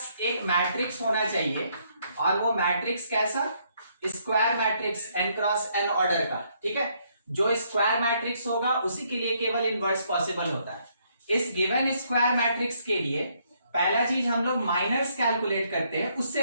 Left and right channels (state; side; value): inverted; both; correlation -0.71